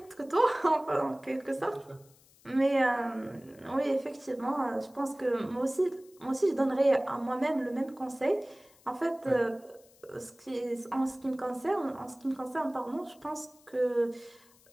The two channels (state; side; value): noise; left; hiss, 28 dB below the sound